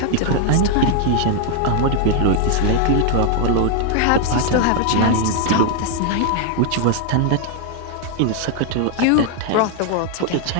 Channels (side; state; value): both; different; correlation 0.00